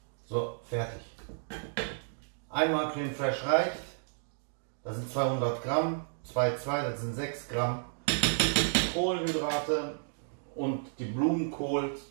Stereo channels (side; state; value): left; silent; digital silence